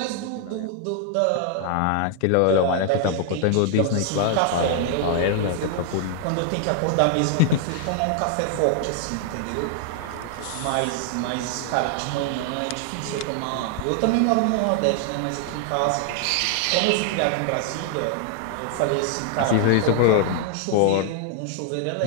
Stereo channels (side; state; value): both; different; correlation 0.00